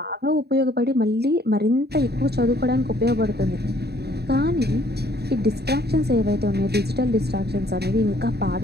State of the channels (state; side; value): late; left; 0.47 ms